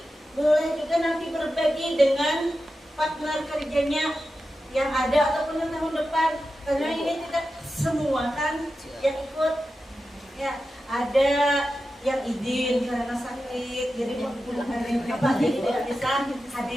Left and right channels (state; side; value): normal; both; correlation 0.91